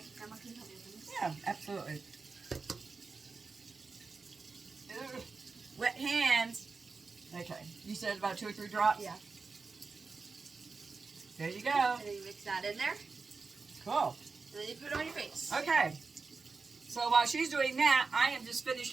Grandma, can you help me with this? Yeah, absolutely. Ugh. Wet hands. Okay. You said about 2 or 3 drops? Yeah. There you go. And then you mix that in there. Cool. And then you put it on your face. Okay. So while she's doing that, I am just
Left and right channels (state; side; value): quieter; left; 4.4 dB